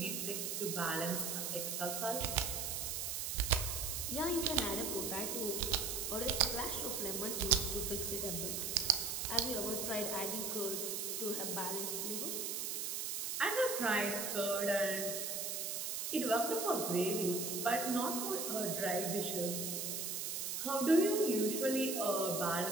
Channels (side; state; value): right; noise; hiss, 2 dB below the sound